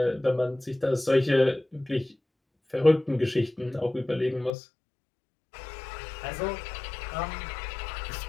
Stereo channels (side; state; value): right; drops out; at 4.5 s